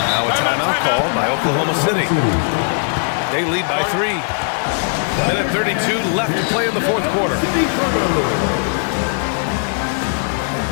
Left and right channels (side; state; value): right; silent; 60 dB below the other